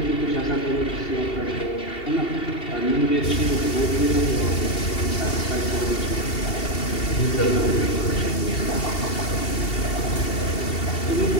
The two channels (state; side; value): late; right; 2.7 ms